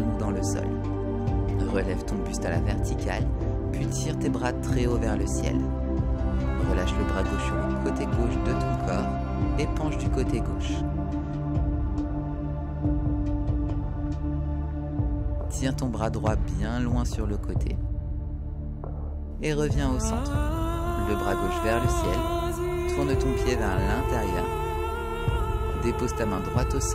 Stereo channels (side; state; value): both; identical; correlation 1.00